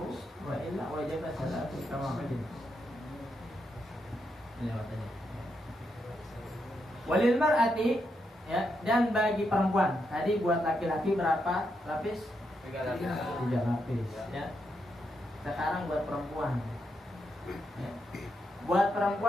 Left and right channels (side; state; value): both; normal; correlation 0.82